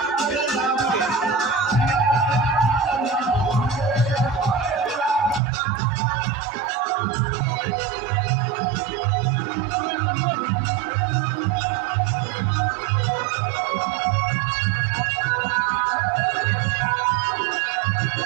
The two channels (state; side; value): drops out; left; at 5.4 s